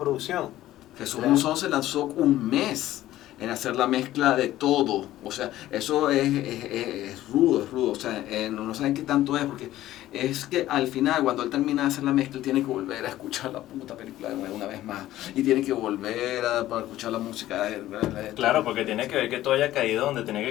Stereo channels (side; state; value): right; quieter; 14.4 dB